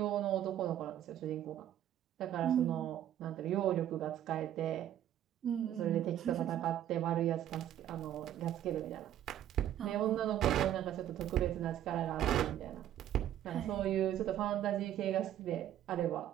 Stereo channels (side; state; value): left; quieter; 11.4 dB